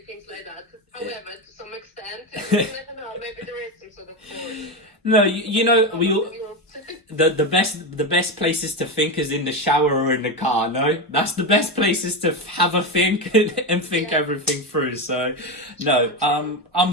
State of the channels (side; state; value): both; normal; correlation 0.15